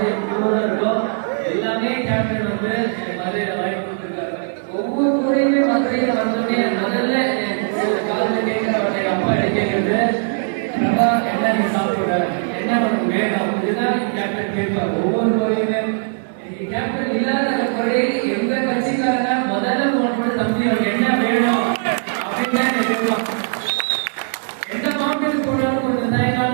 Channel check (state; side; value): silent; left; digital silence